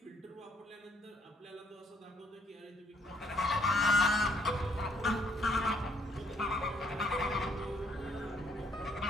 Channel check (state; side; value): normal; both; correlation 0.68